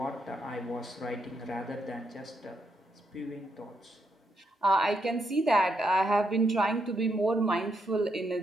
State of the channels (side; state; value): both; normal; correlation 0.79